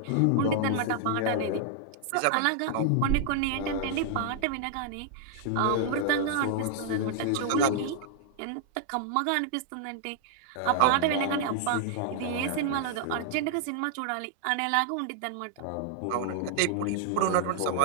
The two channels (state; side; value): different; both; correlation -0.01